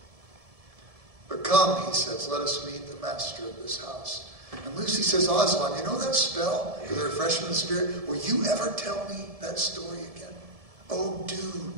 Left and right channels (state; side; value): late; left; 1.7 ms